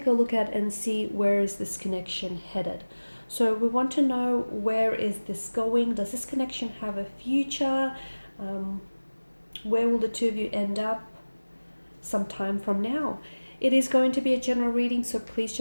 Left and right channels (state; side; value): inverted; both; correlation -1.00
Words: a look at and see where is this connection headed. So we want to know, where is this going? Does this connection have a future? Where will the two of you end up sometime from now? It is going to be a general reading, so please